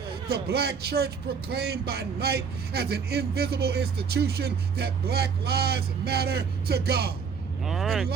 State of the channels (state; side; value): quieter; left; 6.1 dB